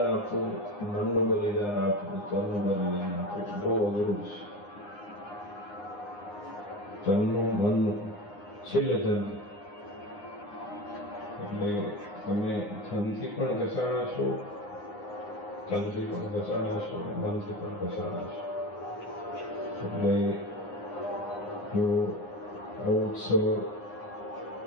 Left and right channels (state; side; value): late; right; 9.7 ms